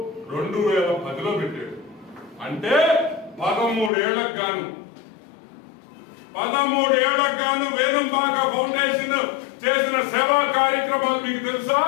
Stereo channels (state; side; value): drops out; right; at 3.9 s